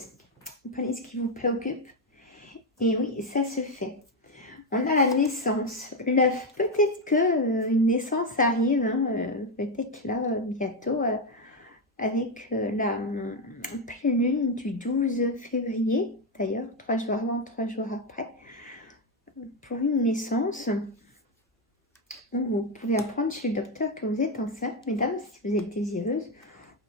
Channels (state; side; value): normal; both; correlation 0.07